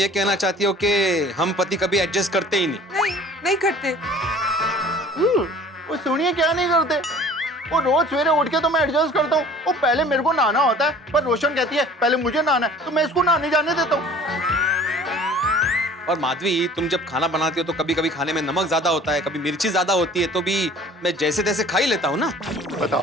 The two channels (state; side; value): normal; both; correlation 0.48